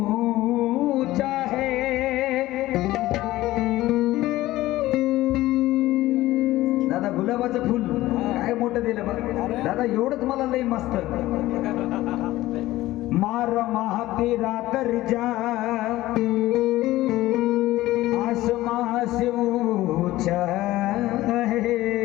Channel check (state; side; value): quieter; right; 16.6 dB